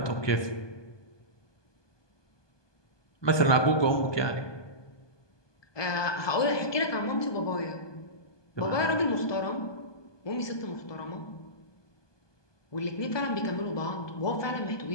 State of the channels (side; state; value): right; late; 1.2 ms